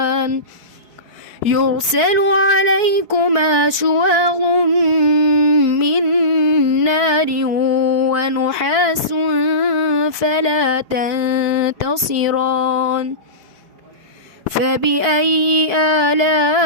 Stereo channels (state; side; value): late; left; 4.6 ms